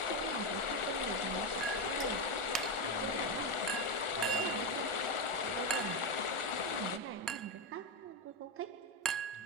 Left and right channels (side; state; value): both; normal; correlation 0.09